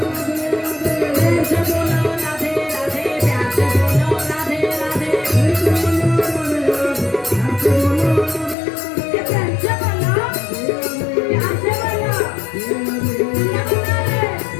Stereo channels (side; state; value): right; drops out; at 8.6 s